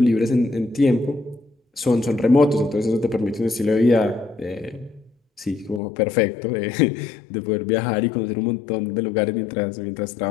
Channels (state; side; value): drops out; right; at 5.8 s